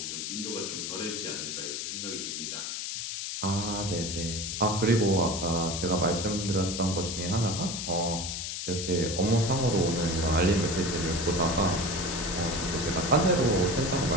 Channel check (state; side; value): noise; left; hiss, 4 dB below the sound